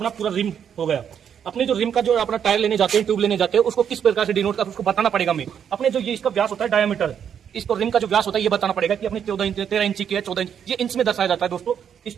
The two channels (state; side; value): quieter; left; 8.3 dB